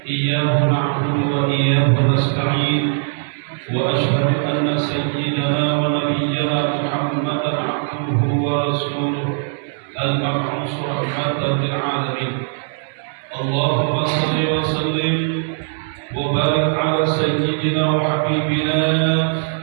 iyyahu na'budu wa iyyahu nasta'in. Wa asyhadu anna sayyidana wa nabiyyana Muhammadan 'abduhu wa rasuluhu al-mab'uts rahmatan lil 'alamin. Allahumma shalli wa sallim wa barik ala sayyidina wa habibina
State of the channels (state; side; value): silent; left; digital silence